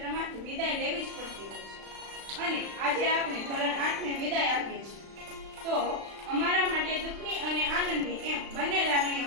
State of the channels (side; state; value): left; late; 36 ms